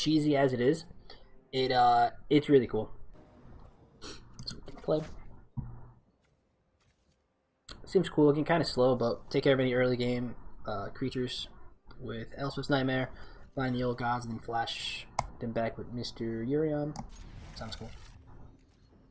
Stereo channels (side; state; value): both; identical; correlation 1.00